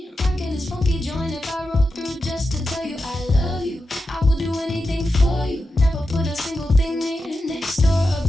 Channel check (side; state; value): both; normal; correlation 0.90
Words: rocking this funky joint. If I roll through just to tell you I love you, I will do anything for you. Never put a single thing near, next door,